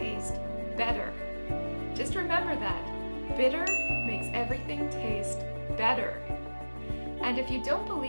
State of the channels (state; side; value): inverted; both; correlation -1.00